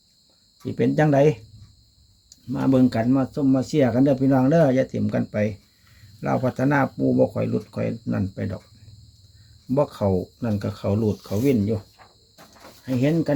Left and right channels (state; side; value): identical; both; correlation 1.00